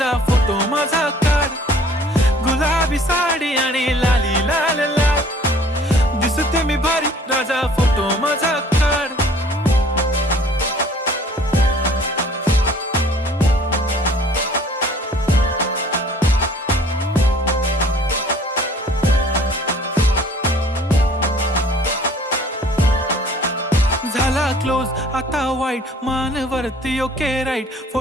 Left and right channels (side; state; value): both; normal; correlation 0.54